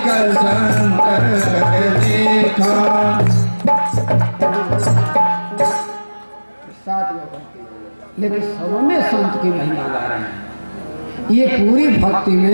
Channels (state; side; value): inverted; both; correlation -1.00